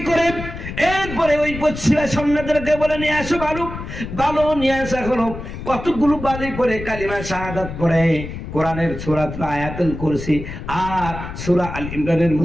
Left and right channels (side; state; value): left; noise; rumble, 9 dB below the sound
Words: করে এরপরে ওই পশ্চিমা সৈন্যদেরকে বলে, নিয়ে আসো বালু নিয়ে আসা হলো। কতগুলো বালি পরে কালিমা শাহাদাত পড়ে কোরআনের সূরা আয়াতুল কুরসি আর সূরা আল ইমরানের